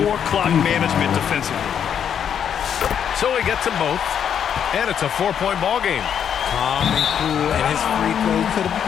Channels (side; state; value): right; quieter; 8.4 dB